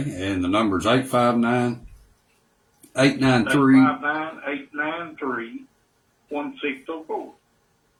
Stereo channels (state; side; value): identical; both; correlation 1.00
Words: and the number's 859-893. 859-893-1604.